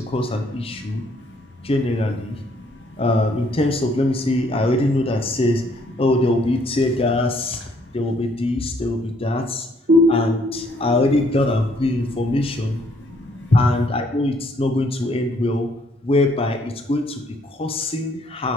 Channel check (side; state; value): both; normal; correlation 0.66